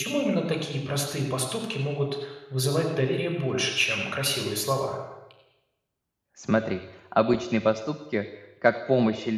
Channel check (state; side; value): identical; both; correlation 1.00